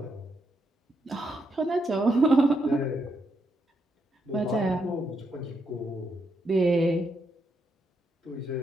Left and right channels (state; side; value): normal; both; correlation 0.79